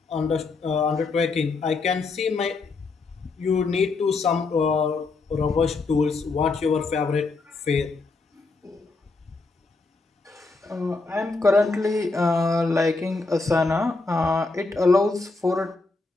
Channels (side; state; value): right; quieter; 3.8 dB